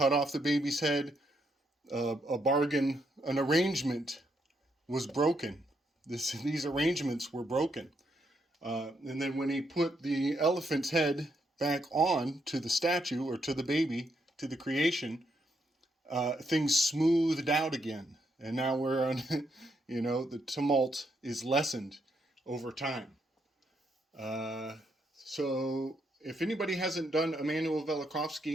off the baby's head, an arrangement was broken. These arrangements were broken. And then when he put the elephant's head back on to the statue, or to the baby, to the creation, things smoothed out again. And now we're on, the tumult is lessened over time. So if anybody hasn't done Immanuel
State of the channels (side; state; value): both; normal; correlation 0.77